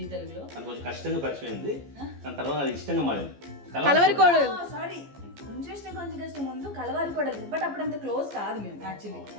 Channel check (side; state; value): left; late; 14 ms